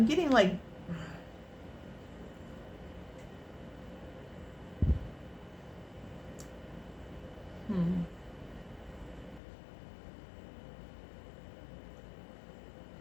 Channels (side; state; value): right; drops out; at 9.4 s